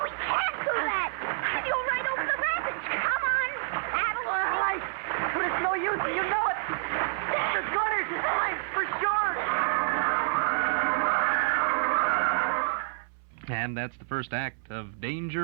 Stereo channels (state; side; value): silent; left; 59 dB below the other